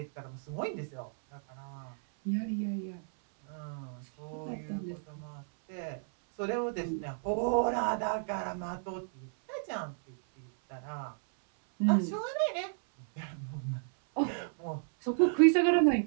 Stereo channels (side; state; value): left; silent; 56 dB below the other